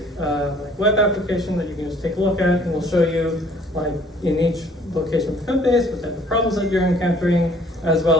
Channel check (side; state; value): both; normal; correlation 0.57